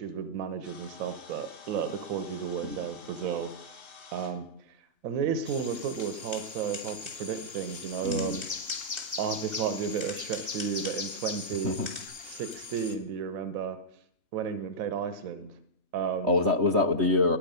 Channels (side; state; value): left; late; 2.8 ms